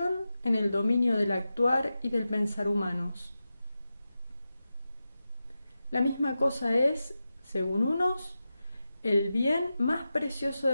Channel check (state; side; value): inverted; both; correlation -0.92